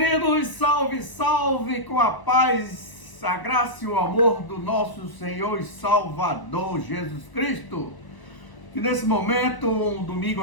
salve, salve, com a paz, a graça e o amor do nosso Senhor e Salvador Jesus Cristo. Que nesse momento, um domingo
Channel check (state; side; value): late; right; 1.0 ms